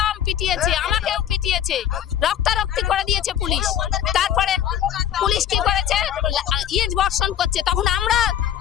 পিটিয়েছে, আমাকেও পিটিয়েছে, রক্তারক্তি করে দিয়েছে পুলিশ। তারপরে পুলিশ কি করেছে, ইট বর্ষণ করছে। তখন আমরা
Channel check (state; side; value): quieter; right; 10.2 dB